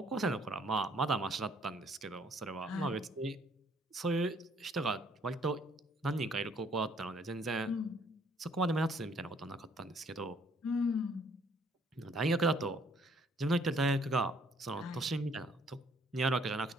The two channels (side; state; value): both; normal; correlation 0.63